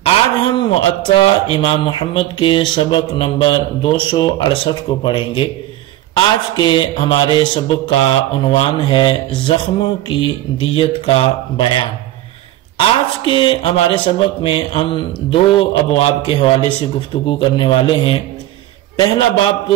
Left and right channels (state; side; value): quieter; left; 14.8 dB